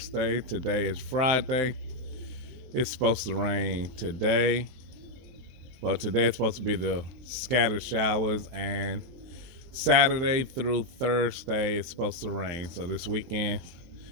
Today is Friday. It's supposed to rain today. Well, today it's supposed to be the scattered showers, and Saturday through Thursday it's supposed to rain. So this weekend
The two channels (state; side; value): late; left; 23 ms